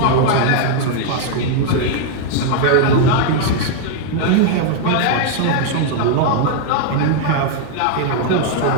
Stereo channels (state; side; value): different; both; correlation 0.00